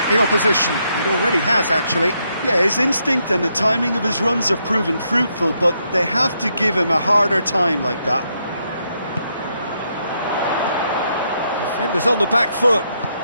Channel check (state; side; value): inverted; both; correlation -0.78